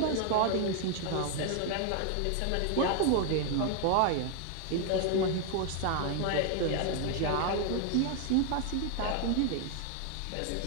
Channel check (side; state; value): both; different; correlation 0.00